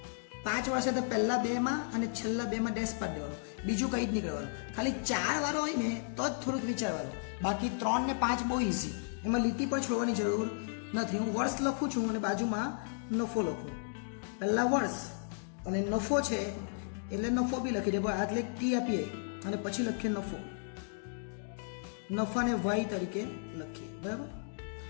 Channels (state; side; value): silent; right; digital silence